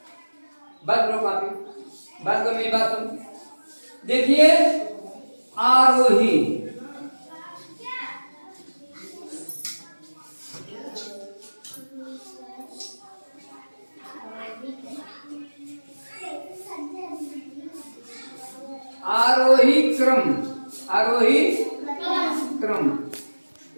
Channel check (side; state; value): both; inverted; correlation -1.00